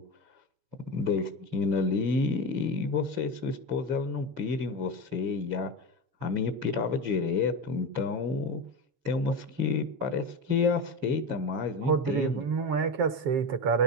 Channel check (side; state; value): left; late; 7.1 ms